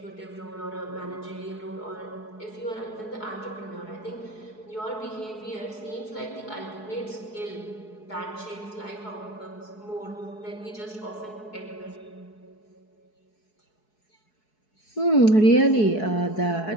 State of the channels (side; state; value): right; late; 4.7 ms